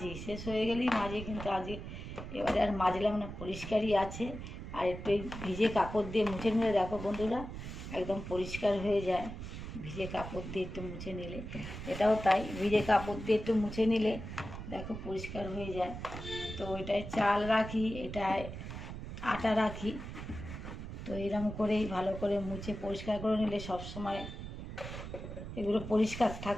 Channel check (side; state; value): right; noise; rumble, 9 dB below the sound